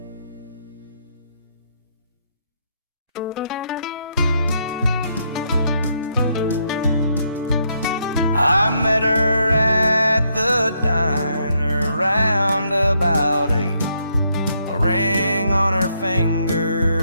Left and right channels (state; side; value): inverted; both; correlation -0.75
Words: I met her at the diner round about 8. A ring on her